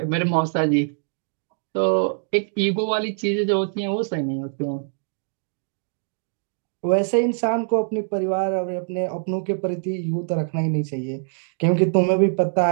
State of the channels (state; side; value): silent; left; 63 dB below the other